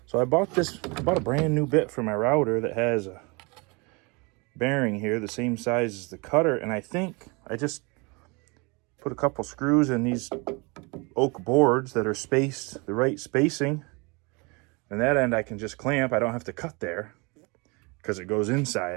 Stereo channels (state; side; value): quieter; left; 28.6 dB